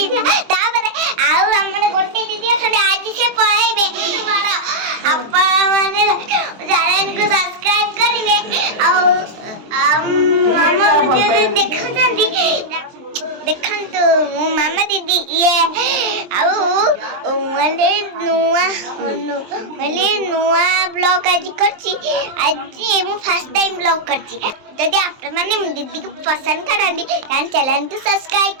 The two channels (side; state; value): left; late; 23 ms